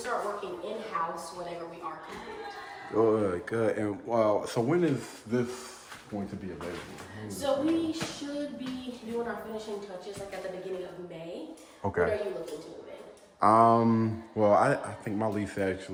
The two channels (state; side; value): identical; both; correlation 1.00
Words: working in-house whenever we are complete. Good. And so when is this going to be available? So we should be doing our finishing touches at the beginning of May. Okay. What are you looking to move in? Well, I think my lease